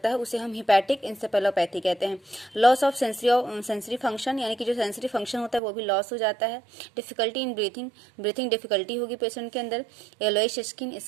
है, उसे हम हिपैटिक इंसेफेलोपैथी कहते हैं। लॉस ऑफ सेंसरी फंक्शन, यानी कि जो सेंसरी फंक्शन होता है वो भी लॉस हो जाता है। डिफिकल्टी इन ब्रीथिंग डिफिकल्टी होगी पेशेंट के अंदर। येलोइश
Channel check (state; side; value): drops out; left; at 5.6 s